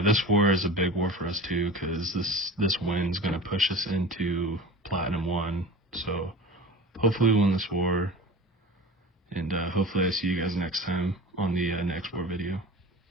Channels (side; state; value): both; normal; correlation 0.35